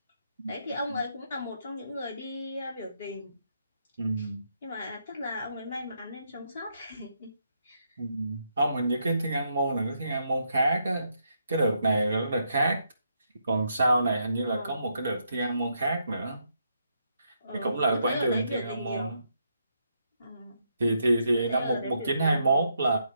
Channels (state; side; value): inverted; both; correlation -0.78